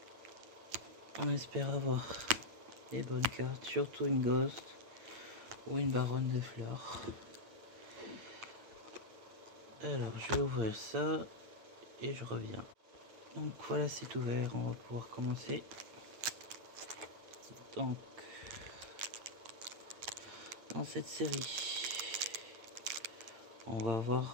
On espère avoir des bonnes cartes, surtout une Ghost ou une Baronne des Fleurs. Alors, je vais ouvrir ça et je reviens. Donc voilà, c'est ouvert, on va pouvoir commencer. Donc, dans cette série, on va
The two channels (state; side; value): late; left; 9.0 ms